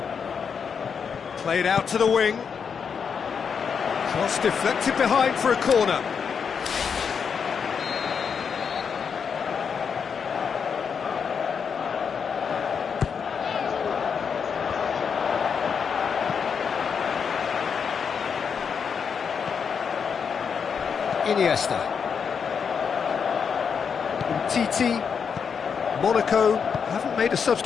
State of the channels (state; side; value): quieter; right; 6.5 dB